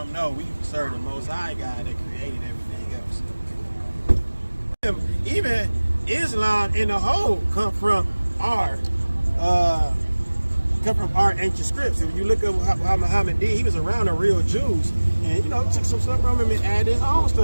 no, we serve the Most High God that created everything else. Even Islam in the whole come from our ancient scripts. If you look at how Muhammad did, he was around the real Jews, and took some stuff from him and added his own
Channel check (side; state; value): both; inverted; correlation -1.00